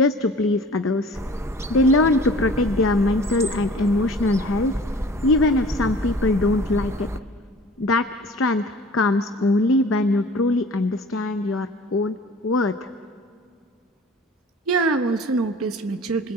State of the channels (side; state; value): both; normal; correlation 0.46